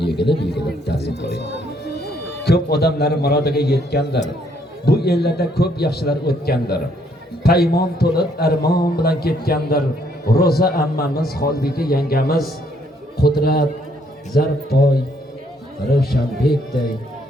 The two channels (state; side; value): normal; both; correlation 0.69